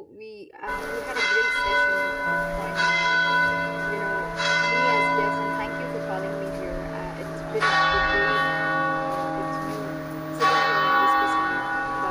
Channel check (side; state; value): both; identical; correlation 1.00